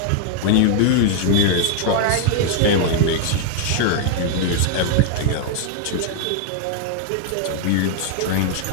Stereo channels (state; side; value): different; both; correlation 0.00